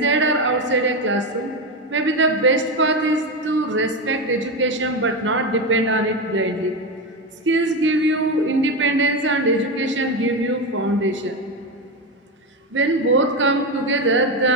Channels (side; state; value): both; normal; correlation 0.14